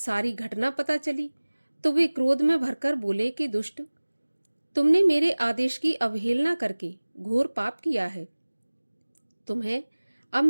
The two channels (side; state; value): both; inverted; correlation -1.00